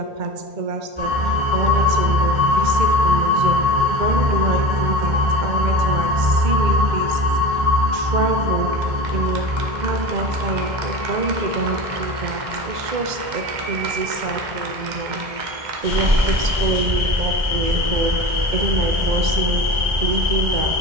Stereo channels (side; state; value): left; late; 2.1 ms